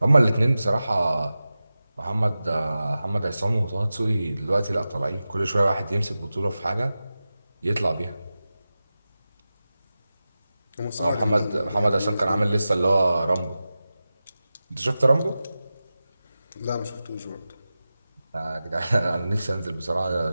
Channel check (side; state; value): both; inverted; correlation -0.94